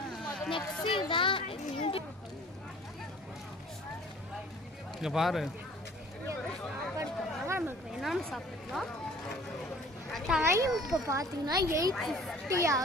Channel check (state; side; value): normal; both; correlation 0.50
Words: நெக்ஸ்ட் தான் இங்க பாரு, நமக்கு என்னன்னு சாப்பிடலாம். டைம் இப்போ பார்த்தீங்கன்னா 8:50